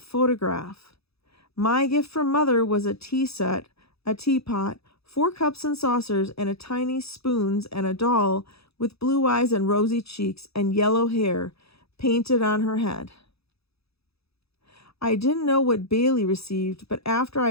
My gift from Mother was a tea set, a teapot, 4 cups and saucers, and a tiny spoons, and a doll with blue eyes and rosy cheeks and yellow hair painted on her head. I didn't know what Bailey received, but after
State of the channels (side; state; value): right; late; 0.78 ms